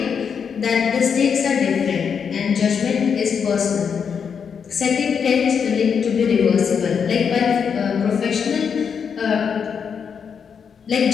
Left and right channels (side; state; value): right; quieter; 6.7 dB